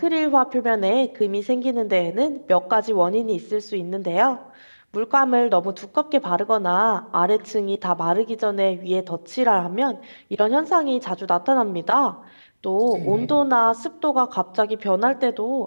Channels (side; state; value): both; inverted; correlation -1.00